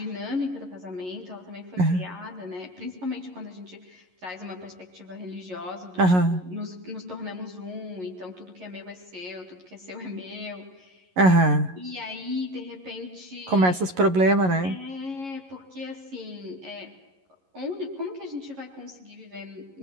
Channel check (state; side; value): late; left; 11 ms